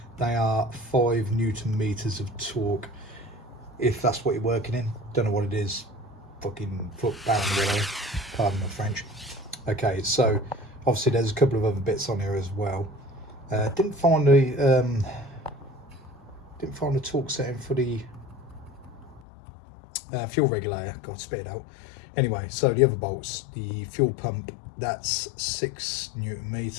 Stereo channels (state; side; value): drops out; right; at 19.2 s